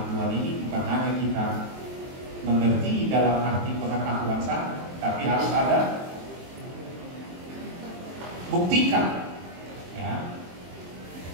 Tuhan ini bukan hanya kita mengerti dalam arti pengetahuan saja, tapi harus ada buktikan, ya.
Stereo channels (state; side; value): late; left; 23 ms